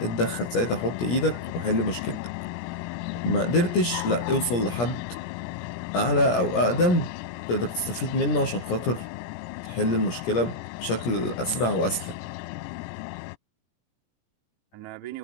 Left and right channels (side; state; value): right; late; 17 ms